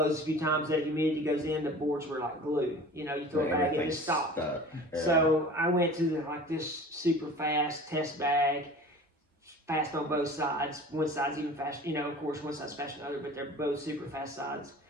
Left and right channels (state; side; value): normal; both; correlation 0.41